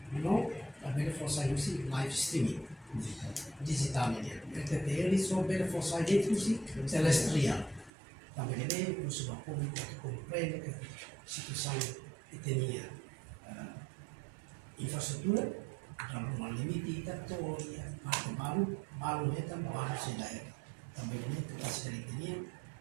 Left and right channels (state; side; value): drops out; left; at 7.9 s